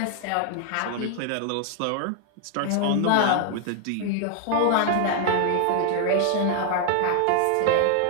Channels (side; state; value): both; different; correlation 0.00